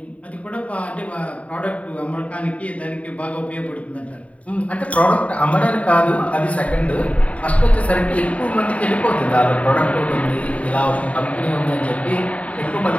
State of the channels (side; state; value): right; late; 0.067 ms